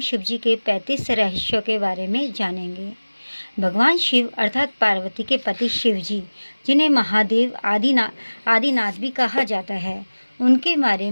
जी के 35 रहस्यों के बारे में जानेंगे। भगवान शिव अर्थात पार्वती के पति शिव जी, जिन्हें महादेव आदिनाथ भी कहा जाता है, उनके बारे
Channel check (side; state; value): both; inverted; correlation -1.00